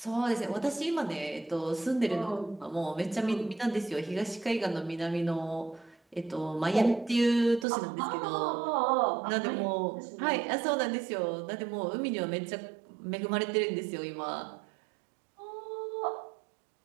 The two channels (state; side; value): drops out; left; at 7.7 s